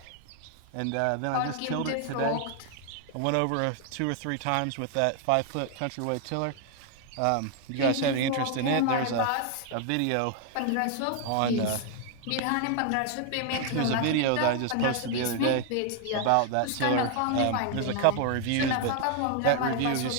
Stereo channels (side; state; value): both; different; correlation 0.00